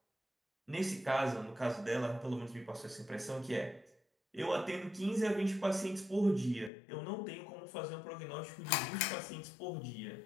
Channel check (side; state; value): right; drops out; at 6.7 s